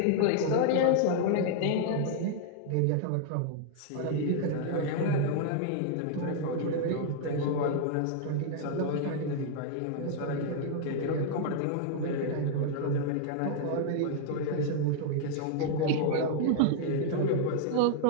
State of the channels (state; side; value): different; both; correlation -0.01